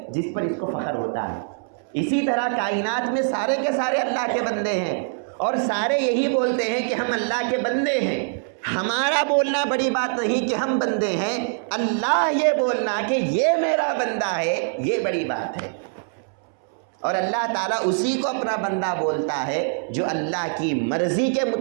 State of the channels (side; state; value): left; silent; 63 dB below the other